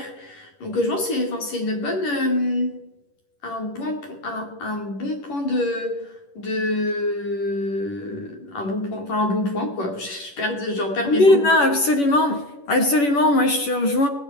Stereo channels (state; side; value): late; right; 11 ms